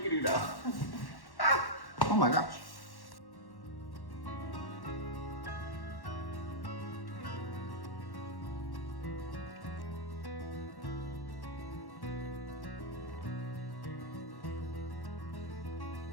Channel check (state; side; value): late; right; 1.1 ms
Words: do now. Ah! Oh my gosh.